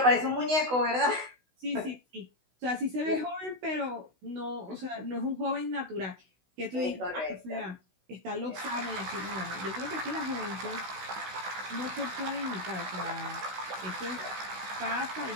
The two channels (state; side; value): late; left; 16 ms